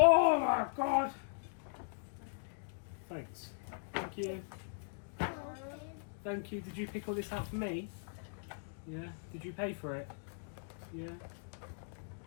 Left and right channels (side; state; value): right; silent; digital silence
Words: my God. Thanks. Thank you. Thank you. Did you pick all this out for me? Yeah. Did you pay for it? Yeah.